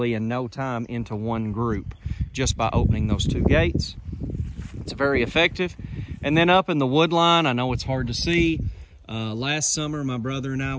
in no time into one group just by opening those 2 gates. It's very effective. And then up in the wood line, I know it's hard to see. Last summer, my brother and I,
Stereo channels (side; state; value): both; identical; correlation 1.00